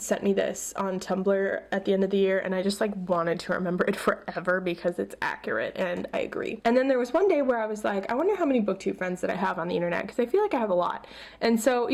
me this on Tumblr at the end of the year, and I just like wanted to remember it forever because it's accurate, and I agree. And then there was one day where I was like, I wonder how many Booktube friends that I have on the internet, because I feel like I have a lot. And so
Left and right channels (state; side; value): identical; both; correlation 1.00